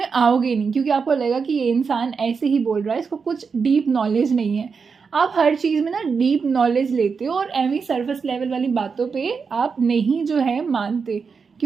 आओगे नहीं क्योंकि आपको लगेगा कि ये इंसान ऐसे ही बोल रहा है, इसको कुछ डीप नॉलेज नहीं है. आप हर चीज़ में ना डीप नॉलेज लेते हो और एवं सरफेस लेवल वाली बातों पे आप नहीं जो है मानते,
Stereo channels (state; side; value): quieter; left; 5.4 dB